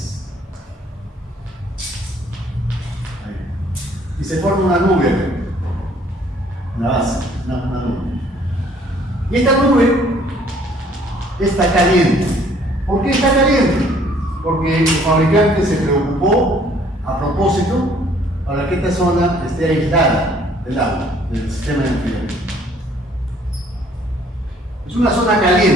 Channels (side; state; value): both; normal; correlation 0.60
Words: Ahí. Y se forma una nube, una base, una nube. Y esta nube está caliente. ¿Por qué está caliente? Porque el fabricante se preocupó a propósito para que esta zona esté aislada del agua, del sistema de enfriamiento. Es una zona